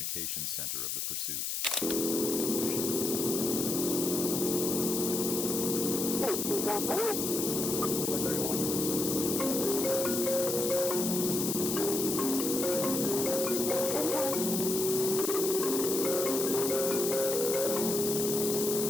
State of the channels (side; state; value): left; noise; hiss, 2 dB below the sound